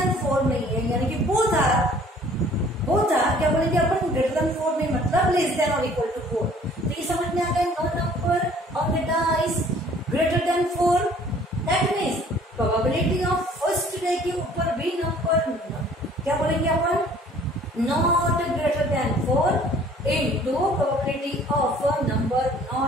4 नहीं है, यानी कि बोथ आर क्या बोलेंगे अपन, ग्रेटर देन 4 नहीं मतलब लेस देन और इक्वल टू 4। तो ये समझ में आ गया, no number on the dice greater than 4, that means probability of first day के ऊपर भी नंबर क्या बोलेंगे अपन, not greater than 4 into probability of a number not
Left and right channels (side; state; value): both; normal; correlation 0.54